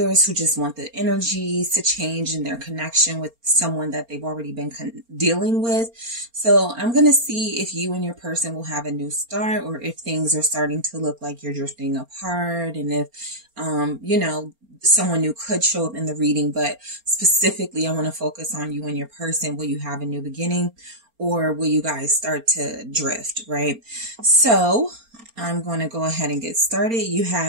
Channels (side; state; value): left; late; 4.3 ms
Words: who just want the energies to change in their connection with someone that they've already been dealing with. So I'm going to see if you and your person will have a new start, or if things are starting to look like you're drifting apart, and if someone new could show up in the reading, but specifically I want to focus on you and your person. Will you have a new beginning, or will you guys start to drift, right? So I'm going to go ahead and get started. You